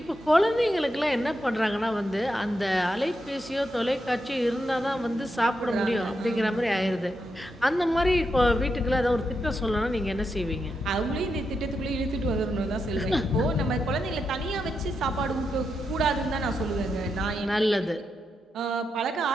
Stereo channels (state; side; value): normal; both; correlation 0.85